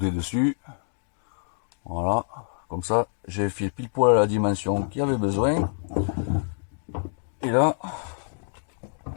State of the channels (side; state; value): right; silent; digital silence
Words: dessus. Voilà, comme ça j'ai fait pile poil à la dimension qu'il y avait besoin. Et là,